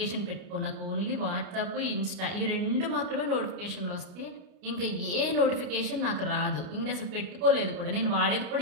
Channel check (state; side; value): late; left; 29 ms